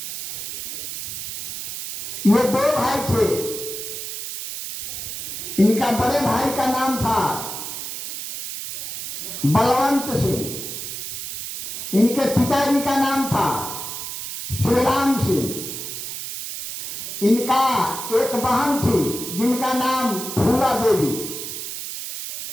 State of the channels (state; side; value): noise; right; hiss, 7 dB below the sound